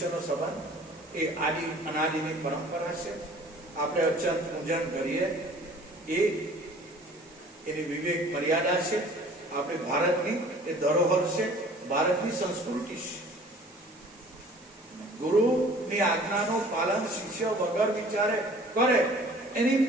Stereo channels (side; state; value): right; noise; hiss, 26 dB below the sound